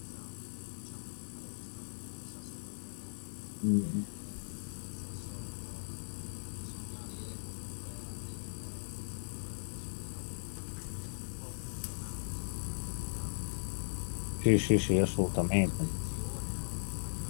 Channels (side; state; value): right; silent; digital silence